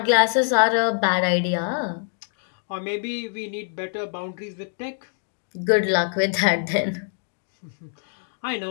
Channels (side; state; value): right; silent; digital silence